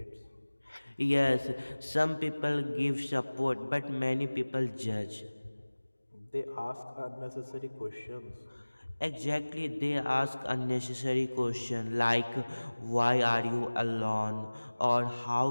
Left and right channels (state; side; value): inverted; both; correlation -1.00